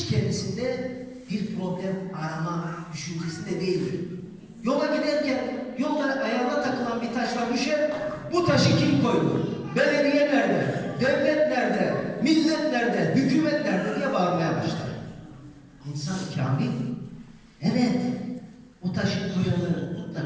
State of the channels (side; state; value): both; identical; correlation 1.00